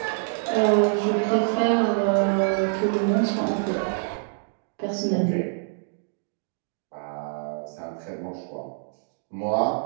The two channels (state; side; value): silent; left; digital silence